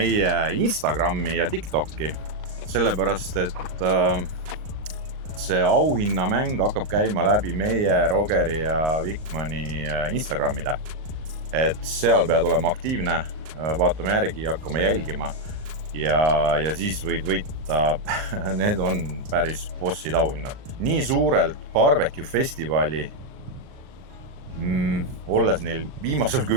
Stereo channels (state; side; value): late; left; 38 ms